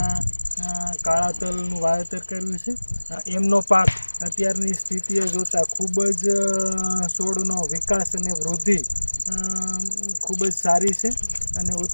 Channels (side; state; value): both; inverted; correlation -1.00